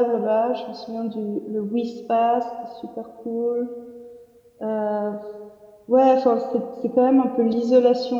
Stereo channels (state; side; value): identical; both; correlation 1.00